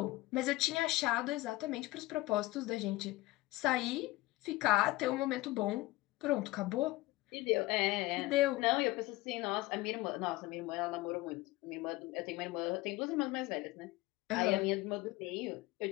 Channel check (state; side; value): quieter; right; 19.4 dB